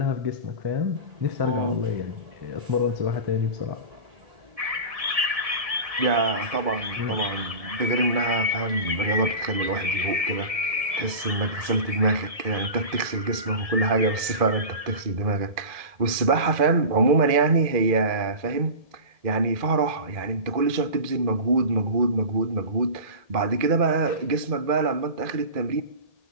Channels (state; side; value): late; left; 1.7 ms